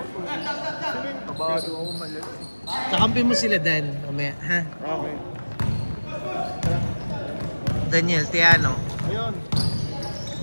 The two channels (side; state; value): both; inverted; correlation -1.00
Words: Kabado ako malas. Kakampi mo sila, Dan. Mamaya, ha? Okay. Daniel, Tiano. Ayun.